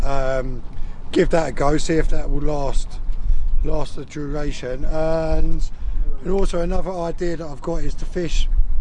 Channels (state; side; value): identical; both; correlation 1.00